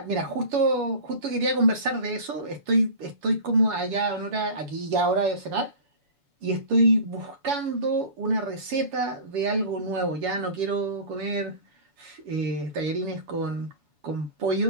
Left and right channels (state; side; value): late; left; 7.0 ms